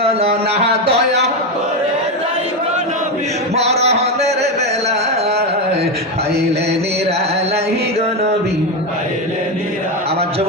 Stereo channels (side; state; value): both; normal; correlation 0.12